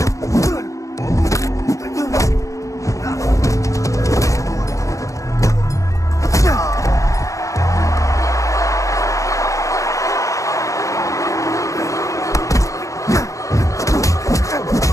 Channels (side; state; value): right; late; 0.15 ms